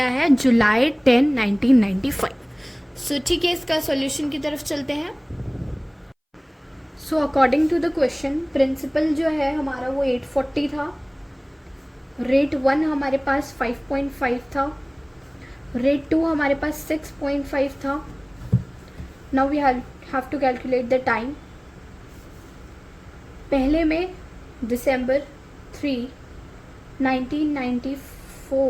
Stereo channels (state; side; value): identical; both; correlation 1.00